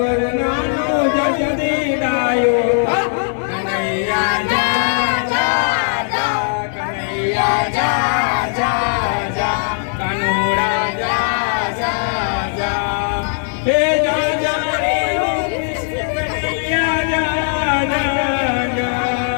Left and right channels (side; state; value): right; silent; digital silence